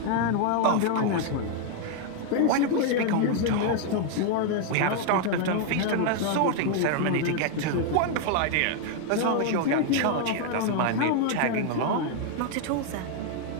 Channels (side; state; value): both; different; correlation 0.00